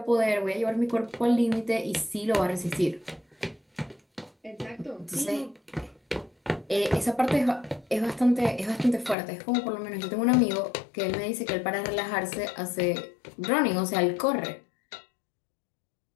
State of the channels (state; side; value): drops out; right; at 9.2 s